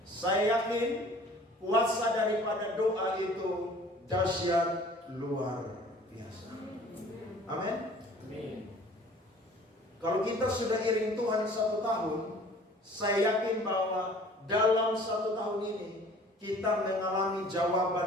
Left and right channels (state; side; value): normal; both; correlation 0.50